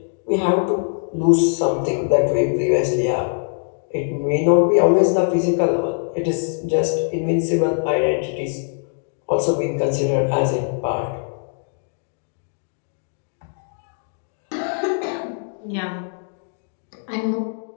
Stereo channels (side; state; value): right; silent; digital silence